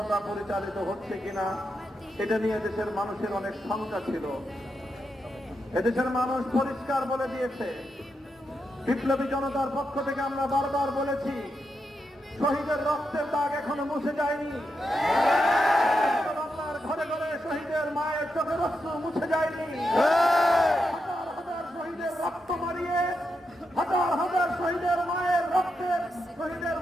পরিচালিত হচ্ছে কিনা এটা নিয়ে দেশের মানুষের অনেক শঙ্কা ছিল। এদেশের মানুষ পরিষ্কার বলে দিয়েছে, বিপ্লবী জনতার পক্ষ থেকে আমরা বারবার বলেছি, শহীদের রক্তের দাগ এখনো মুছে যায়নি। ঘরে ঘরে শহীদের মায়ের চোখের অশ্রু মুছে যায়নি। হাজার হাজার শহীদের রক্ত মারিয়ে, হাজার হাজার শহীদের মায়ের রক্তের, শহীদের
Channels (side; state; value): both; normal; correlation 0.85